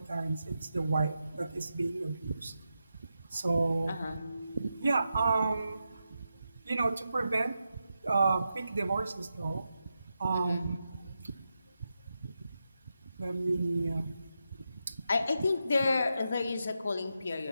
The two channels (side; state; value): both; inverted; correlation -0.88